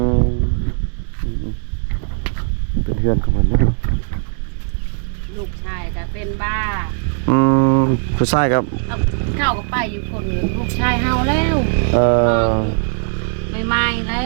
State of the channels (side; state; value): left; silent; 65 dB below the other